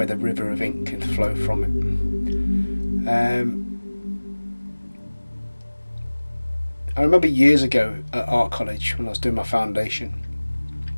the river of ink can flow from it. I remember years ago at art college when I was doing my foundation,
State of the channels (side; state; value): both; inverted; correlation -1.00